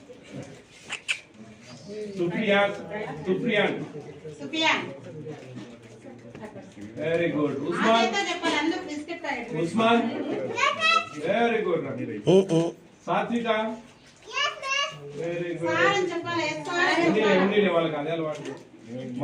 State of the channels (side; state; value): both; identical; correlation 1.00